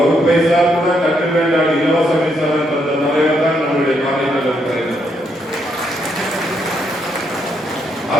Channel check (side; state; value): both; normal; correlation 0.76